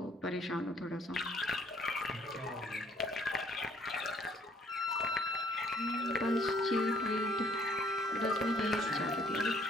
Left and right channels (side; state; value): both; normal; correlation 0.63